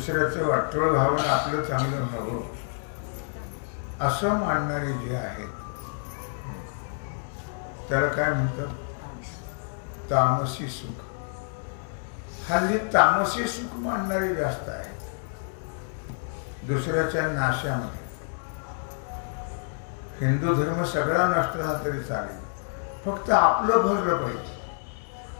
वाटोळ व्हावं, आपलं चांगलं व्हावं असं मानणारे जे आहेत त्याला काय म्हणतात? तामसी सुख. हल्ली तामसी सुख मानणारे जास्त आहेत. दुसऱ्याच्या नाशामध्ये हिंदू धर्म सगळा नष्ट झाला तरी चालेल, फक्त आपलं भरलं पाहिजे.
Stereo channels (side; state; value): right; silent; digital silence